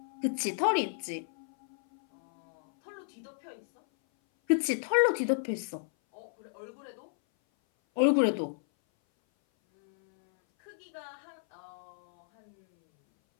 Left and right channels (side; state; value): right; silent; 56 dB below the other